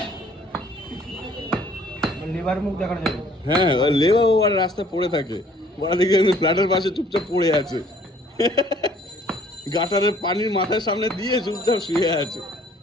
লিভার মুখ দেখানো যাবে। হ্যাঁ, লেবা আর রাস্তায় পড়ে থাকে, ওরা দেখে ফ্ল্যাটের পাশে চুপচাপ পড়ে আছে, গাটারের পানির মাথার সামনে দিয়ে চুপচাপ শুয়ে আছে।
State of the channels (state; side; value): normal; both; correlation 0.58